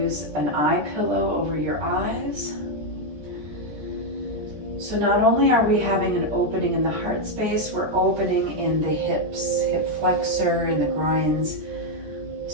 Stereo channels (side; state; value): left; late; 13 ms